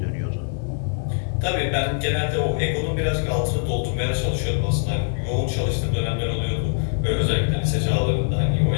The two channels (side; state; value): right; silent; digital silence